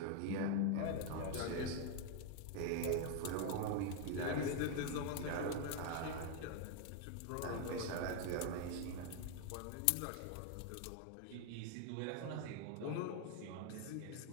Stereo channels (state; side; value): different; both; correlation 0.01